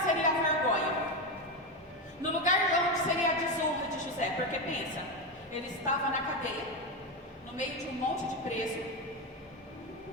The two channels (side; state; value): both; normal; correlation 0.13